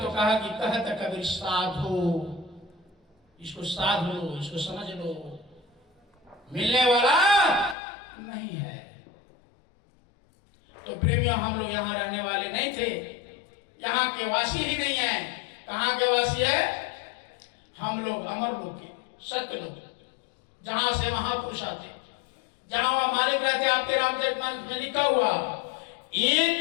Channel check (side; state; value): right; drops out; at 7.8 s